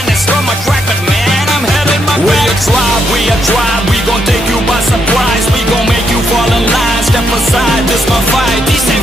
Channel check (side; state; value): both; normal; correlation 0.78